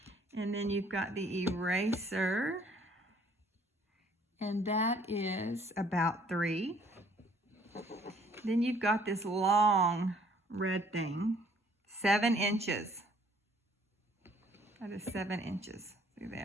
And then you've got the eraser. And that is about 3. Then you've got this long red thing. 7 inches. That is 7 inches through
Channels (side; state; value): both; normal; correlation 0.60